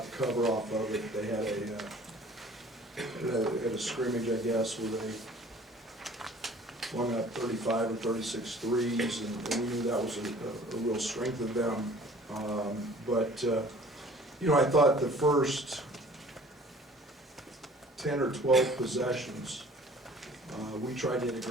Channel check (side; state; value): both; normal; correlation 0.50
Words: the cover off of it. They had a scrimmage, I guess, where they flung up 35 or 36 threes, and we knew that was a real strength of them. You know, I thought the first 10 or 12 possessions, we tried to hit a